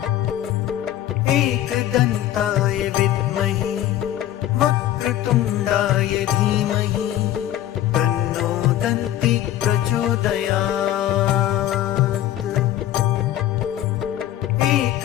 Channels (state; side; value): quieter; right; 12.8 dB